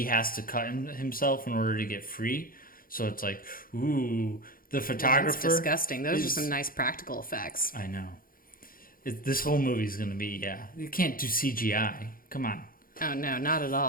has to cut himself in order to get free. So it's like, ooh, the photographer. That's disgusting. Those are some nice practical effects. I know. This whole movie's going to be, you can't do CGI. Come on. Oh, no, not at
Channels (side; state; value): right; late; 0.41 ms